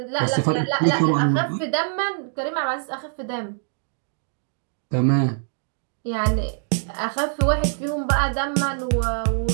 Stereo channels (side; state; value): left; silent; digital silence